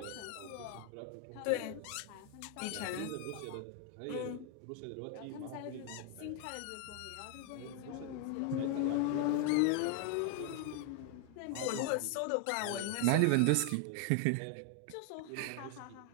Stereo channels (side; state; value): both; different; correlation 0.00